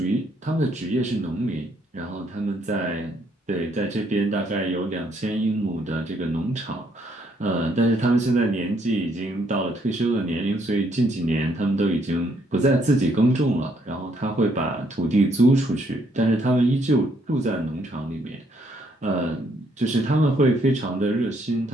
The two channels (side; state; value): both; normal; correlation 0.70